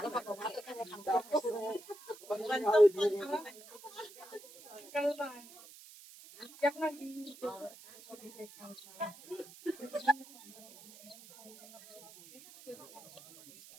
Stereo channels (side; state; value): right; noise; hiss, 19 dB below the sound